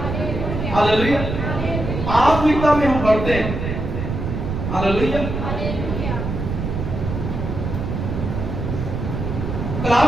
hallelujah. आत्मिकता में हम बढ़ते हैं। हालेलुया।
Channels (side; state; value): right; noise; rumble, 4 dB below the sound